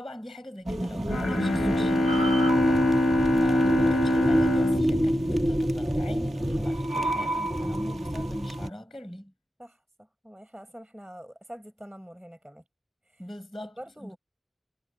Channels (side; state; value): both; normal; correlation 0.89